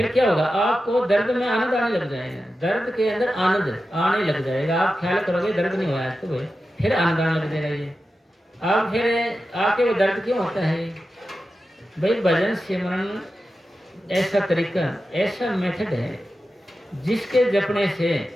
क्या होगा, आपको दर्द में आनंद आने लग जाएगा, दर्द के अंदर आनंद आने लग जाएगा। आप ख्याल करोगे दर्द नहीं हुआ है तो भाई फिर आनंद आने लग जाएगा। ये आप फिर आपके वो दर्द क्यों होता है भाई? भजन सिमरन ऐसा तरीका, ऐसा मेथड है जिसके जपने से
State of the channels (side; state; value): both; normal; correlation 0.92